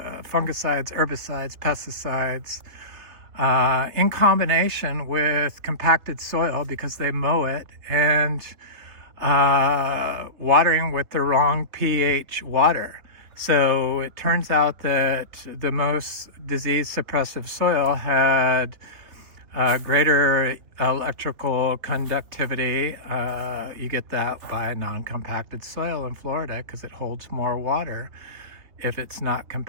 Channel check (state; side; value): late; left; 3.5 ms